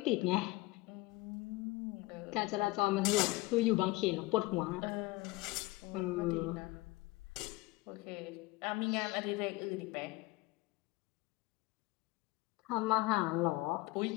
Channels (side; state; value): right; quieter; 20.2 dB